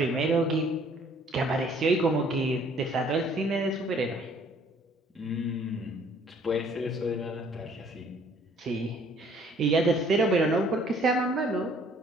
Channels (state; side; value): normal; both; correlation 0.59